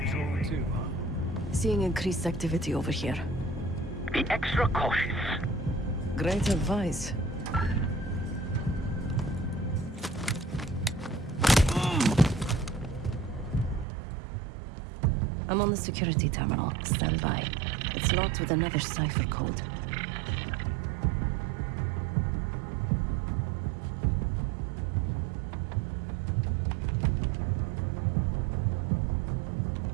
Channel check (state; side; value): drops out; left; at 13.9 s